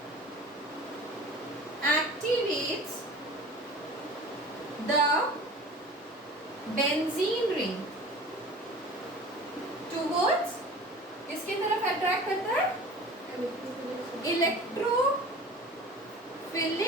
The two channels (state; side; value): normal; both; correlation 0.40